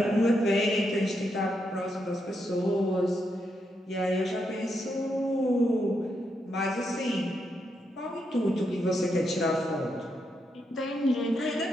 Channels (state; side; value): normal; both; correlation 0.81